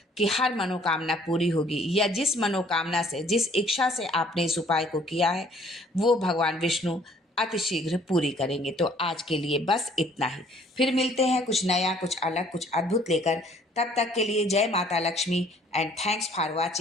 कि हर मनोकामना पूरी होगी, या जिस मनोकामना से, जिस इच्छा से आपने इस उपाय को किया है, वो भगवान विष्णु अतिशीघ्र पूरी करेंगे। तो आज के लिए बस इतना ही। फिर मिलते हैं कुछ नया, कुछ अलग, कुछ अद्भुत लेकर। तब तक के लिए जय माता Lakshmi and thanks for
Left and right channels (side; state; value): both; normal; correlation 0.58